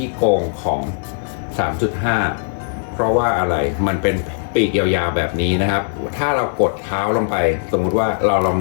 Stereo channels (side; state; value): right; silent; digital silence